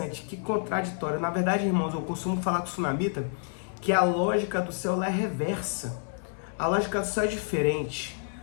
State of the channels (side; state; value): right; silent; 59 dB below the other